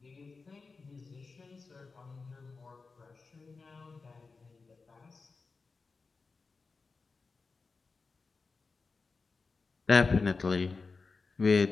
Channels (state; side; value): quieter; right; 4.3 dB